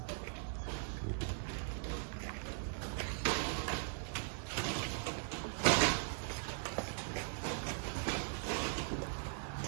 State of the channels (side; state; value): left; silent; digital silence